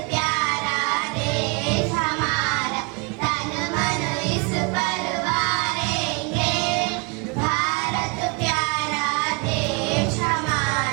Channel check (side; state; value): left; quieter; 31.1 dB